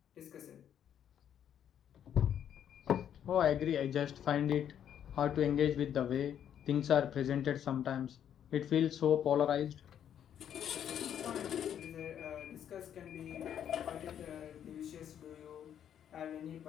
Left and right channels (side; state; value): right; quieter; 9.5 dB